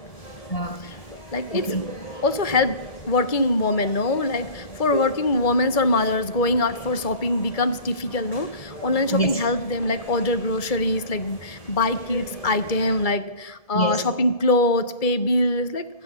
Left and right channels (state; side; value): late; right; 1.7 ms